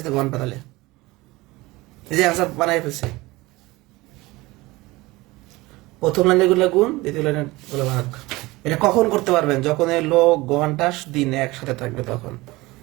ঘন্টা। তাহলে এই যে অ্যান্সার বানাই ফেলছে। প্রথম লাইনে গুলো গুণ, দ্বিতীয় লাইনে গুলো ভাগ। এটা কখন করতে পারবেন? যখন এই লোক ঘন্টা দিন একসাথে থাকবে তখন।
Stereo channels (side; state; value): left; quieter; 20.9 dB